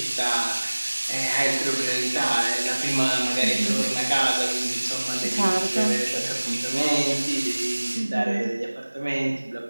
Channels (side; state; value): both; inverted; correlation -1.00